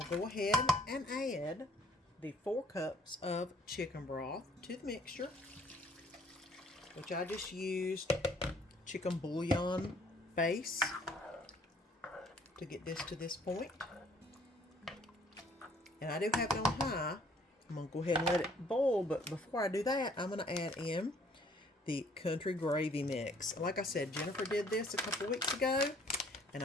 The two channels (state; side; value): normal; both; correlation 0.60